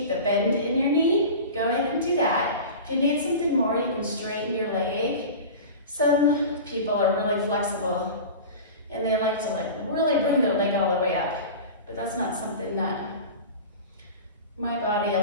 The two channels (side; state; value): both; inverted; correlation -0.33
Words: the bend in your knee, go ahead and do that. If you need something more, you can straighten your leg. Some people are really flexible and they like to really bring their leg all the way up, but that's not something that my body